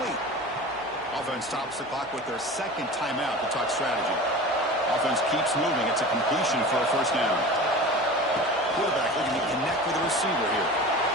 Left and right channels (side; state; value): left; noise; hum, 30 dB below the sound